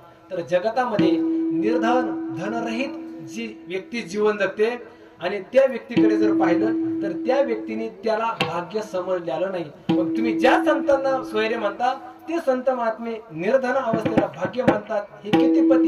तर जगतामध्ये निर्धन धनरहित जी व्यक्ती जीवन जगते, आणि त्या व्यक्तीकडे जर पाहिलं तर त्या व्यक्तीने त्याला भाग्य समजलेलं नाही. मग तुम्ही ज्या संतांना सोयरे म्हणता ते संत महात्मे निर्धन अवस्थेला भाग्य मानतात. हे कितीपत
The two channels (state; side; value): identical; both; correlation 1.00